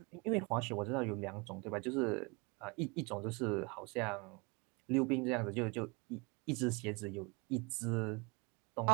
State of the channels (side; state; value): left; quieter; 28.6 dB